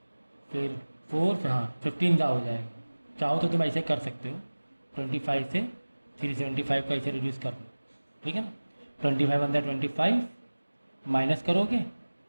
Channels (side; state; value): both; inverted; correlation -1.00